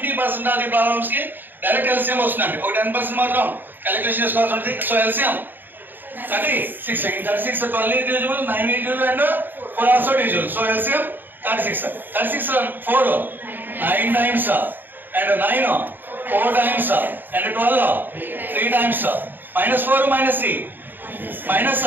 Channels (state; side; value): late; left; 0.092 ms